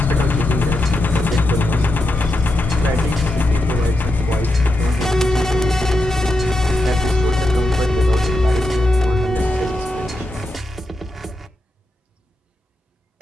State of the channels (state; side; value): normal; both; correlation 0.86